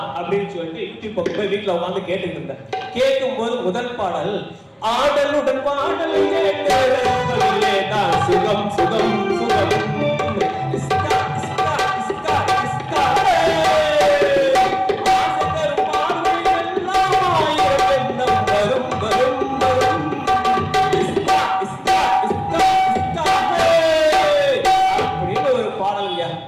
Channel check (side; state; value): both; identical; correlation 1.00